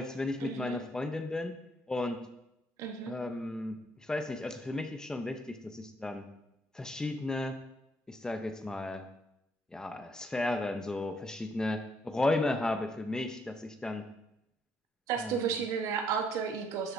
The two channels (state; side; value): normal; both; correlation 0.69